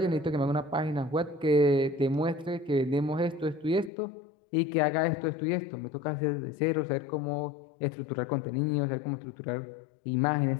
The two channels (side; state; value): right; drops out; at 3.9 s